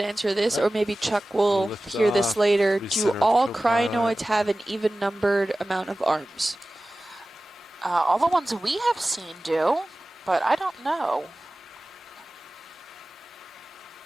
answer this, or maybe Chuck will Lift hear this off, later. Do recenter all co-pilot. crinoids have an even numbered amount of arms? All the ones we have seen do, but I don't know.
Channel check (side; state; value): both; normal; correlation 0.97